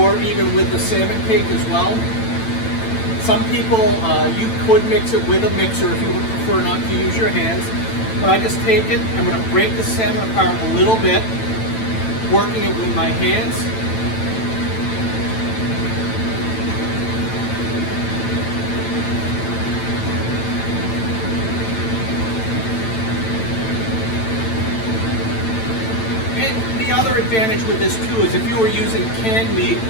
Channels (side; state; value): right; late; 9.0 ms